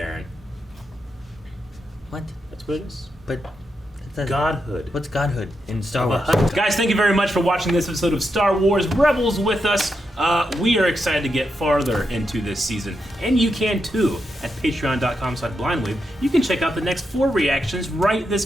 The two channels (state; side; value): normal; both; correlation 0.84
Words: What? That's what it is. But that's Godhood. What's godhood in Star The Wars? Hutt. Guys, thank you very much for watching this episode of Star Wars Rebels with us. We are excited to get farther into this season, and you can too at patreon.com/blindwave. You can check out the next 4 reactions right this